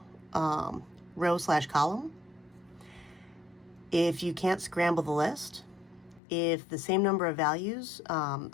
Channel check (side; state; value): right; drops out; at 6.2 s